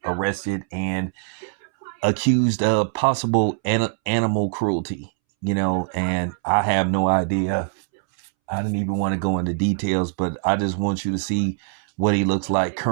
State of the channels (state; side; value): silent; left; 64 dB below the other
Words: arrested and accused of possible animal cruelty, and I have no idea. I didn't even want to go into details, but I just want you to see what he looks like